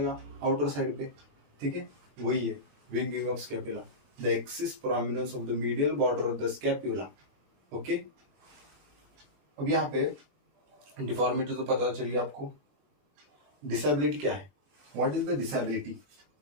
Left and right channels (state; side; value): late; left; 21 ms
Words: आउटर साइड पे. ठीक है, वही है winging of scapula, the excess prominence of the medial border of the scapula. Okay, अब यहाँ पे डिफॉर्मिटी तो पता चल गया आपको. डिसेबिलिटी क्या है, what is the disability.